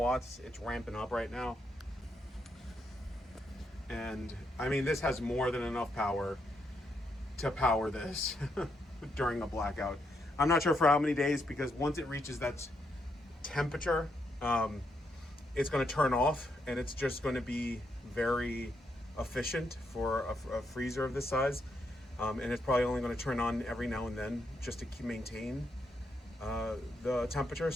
It's ramping up right now. And I mean, this has more than enough power to power this during a blackout. I'm not sure for how many days, because once it reaches that temperature, it's going to turn off, and it's just going to be very efficient for a freezer of this size. And it's probably only going to turn on every now and then just to maintain the temperature.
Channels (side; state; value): both; normal; correlation 0.79